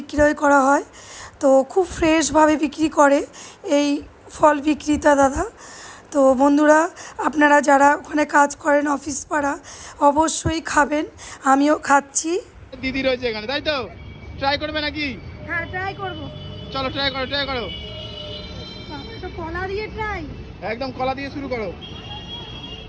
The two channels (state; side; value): identical; both; correlation 1.00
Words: করা হয়। তো খুব ফ্রেশভাবে বিক্রি করে এই ফল বিক্রেতা দাদা। তো বন্ধুরা, আপনারা যারা ওখানে কাজ করেন অফিস পাড়া, অবশ্যই খাবেন। আমিও খাচ্ছি। দিদি রয়েছে এখানে, তাই তো? ট্রাই করবে নাকি? হ্যাঁ, ট্রাই করবো। চলো ট্রাই করো। তো কলা দিয়ে ট্রাই, একদম কলা দিয়ে শুরু করো।